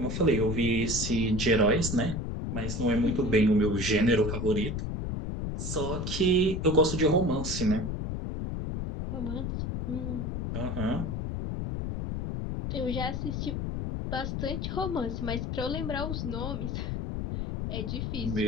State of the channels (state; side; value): noise; left; rumble, 3 dB below the sound